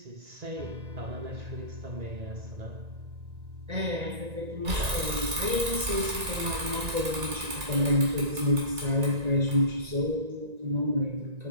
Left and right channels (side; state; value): left; late; 1.9 ms